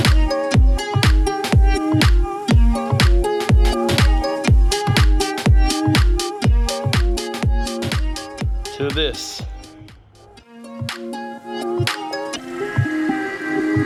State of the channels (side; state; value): both; identical; correlation 1.00